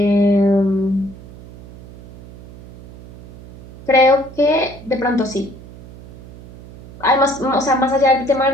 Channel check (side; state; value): right; noise; hum, 19 dB below the sound